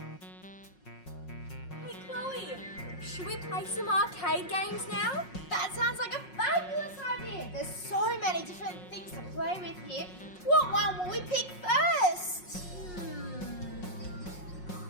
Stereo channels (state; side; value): late; right; 5.5 ms